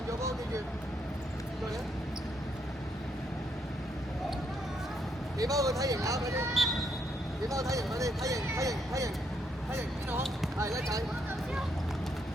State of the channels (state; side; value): normal; both; correlation 0.75